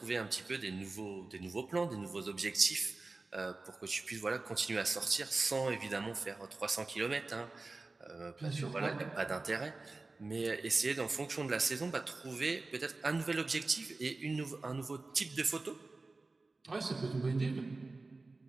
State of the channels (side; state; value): left; quieter; 3.5 dB